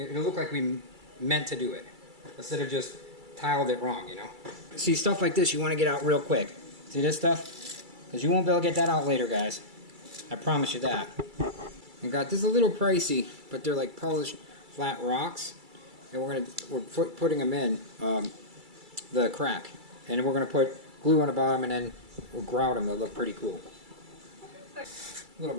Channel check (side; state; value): left; late; 2.3 ms